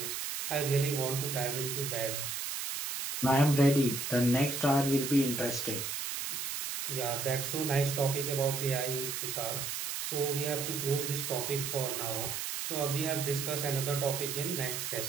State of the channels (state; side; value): noise; right; hiss, 3 dB below the sound